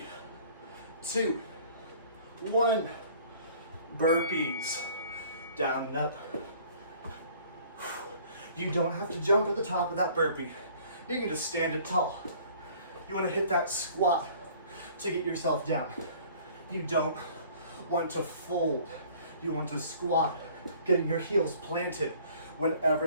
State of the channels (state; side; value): inverted; both; correlation -0.53